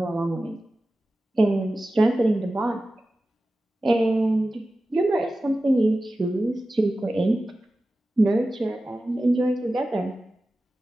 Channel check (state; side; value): normal; both; correlation 0.95